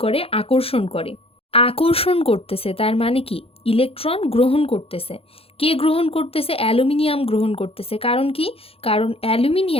করে? আকর্ষণ করে। আকর্ষণ করতেছে তার মানে কি? ইলেকট্রন গ্রহণ করতেছে। কে গ্রহণ করতেছে? অ্যালুমিনিয়াম গ্রহণ করতেছে। কারণ কি? কারণ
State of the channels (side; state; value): right; late; 0.28 ms